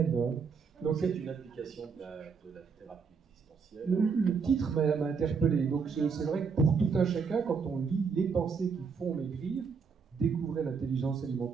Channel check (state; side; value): quieter; left; 5.6 dB